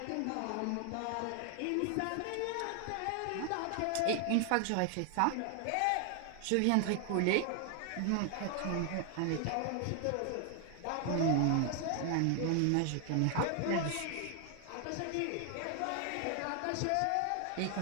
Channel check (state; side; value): different; both; correlation 0.00